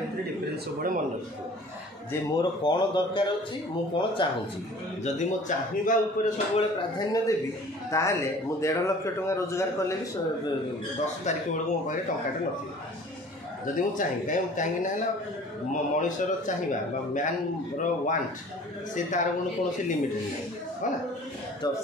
डिफरेंस सब मन रखो जे मोर कौन दरकार अच्छी मु कौन चाहूँगी जदि मो चाहिए ऊपर सब प्राधान्य देवी ताहले मु 1.5 लाख टका रोजगार कले भी 10 तारीख बेलू मो पाखे टंकाटे न जदि मु चाहिए कहीं मनीषर चाहिए मैन वांट से तार कौन से लिमिट नहीं है ना तो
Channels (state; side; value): normal; both; correlation 0.47